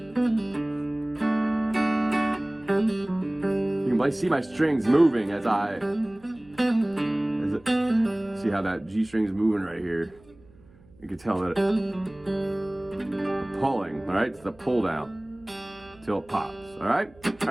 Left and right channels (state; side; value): noise; right; hum, 27 dB below the sound